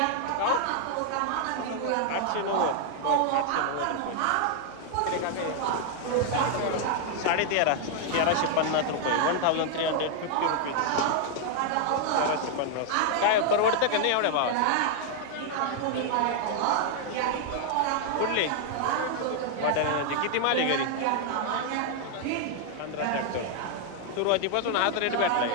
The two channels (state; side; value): different; both; correlation 0.00